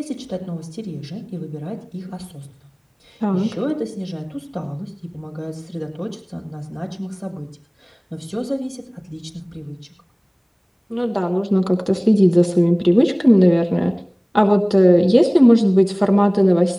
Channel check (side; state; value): both; identical; correlation 1.00